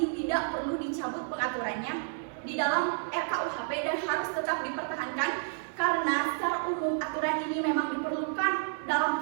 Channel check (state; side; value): silent; left; digital silence